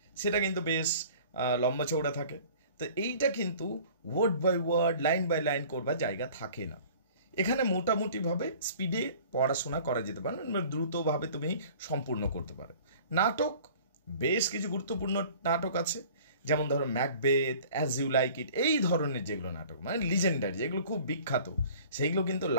সেটা কিন্তু বেশ লম্বা চৌড়া থাকে। তো এইটা কিন্তু word by word, line by line করবার জায়গা থাকে না। এখানে মোটামুটিভাবে স্পিডে পড়াশোনা করা যেতে পারে, দ্রুতভাবে তুমি সম্পূর্ণ করতে পারো। নাটক, বেশ কিছু গুরুত্বপূর্ণ নাটক আছে, যেমন ধরো Macbeth, as you like it, এই ধরনের যেগুলো নাটক মানে লিজেন্ডারি, যেগুলো খুব বিখ্যাত, সেইগুলো কিন্তু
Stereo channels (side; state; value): both; inverted; correlation -0.48